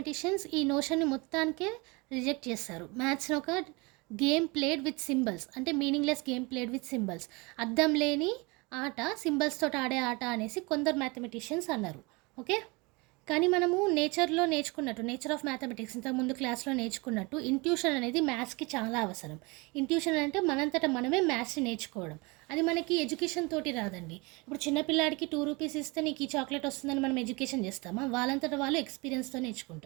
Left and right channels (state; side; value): quieter; left; 26.9 dB